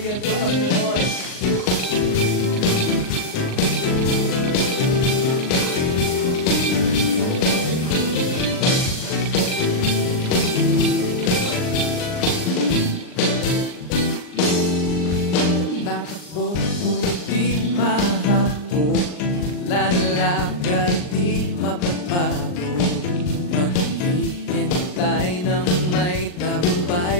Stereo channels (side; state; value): right; late; 39 ms